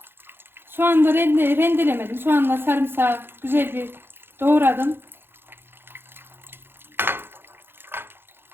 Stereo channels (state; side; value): late; left; 0.10 ms